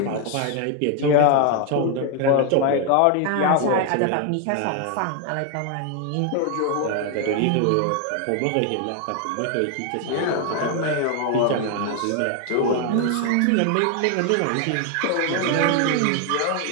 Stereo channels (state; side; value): different; both; correlation 0.01